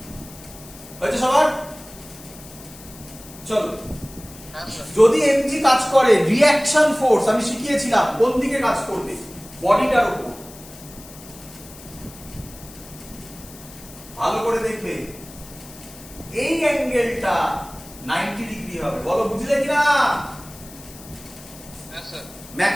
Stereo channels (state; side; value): noise; left; hiss, 18 dB below the sound